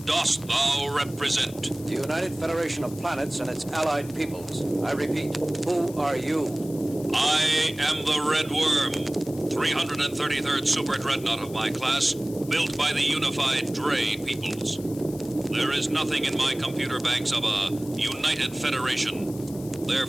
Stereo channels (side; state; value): left; noise; hiss, 18 dB below the sound